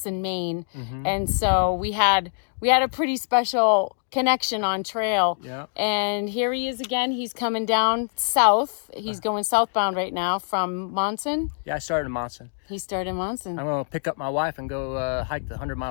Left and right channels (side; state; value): right; silent; 62 dB below the other